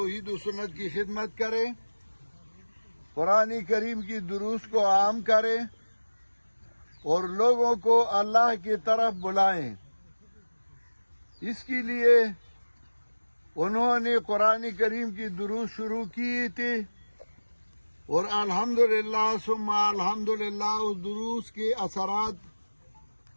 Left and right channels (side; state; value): both; inverted; correlation -1.00